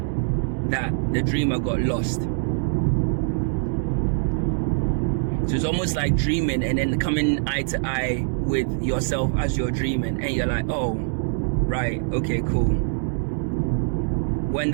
that the dreamer got lost. So it's almost like dreaming and then coming eye to eye with yourself as you're dreaming, and you're like, oh, right, okay, cool. When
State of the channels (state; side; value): silent; left; digital silence